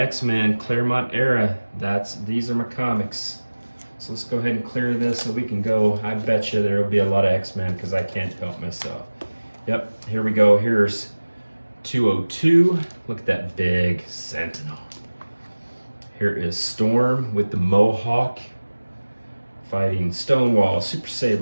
Claremont era. These are my comics. So let's go ahead and clear this so we can go. I bet you there will be a lot of X-Men because I can't help myself. Yep, here we go. Here's 202. Look at that big Sentinel. Here is Storm with the Mohawk fighting Stonewall, Super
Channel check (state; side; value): inverted; both; correlation -1.00